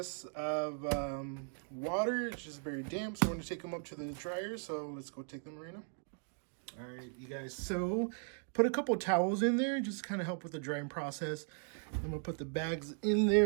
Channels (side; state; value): left; silent; 53 dB below the other